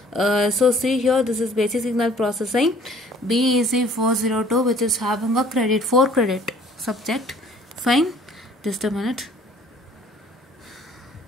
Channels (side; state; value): both; normal; correlation 0.55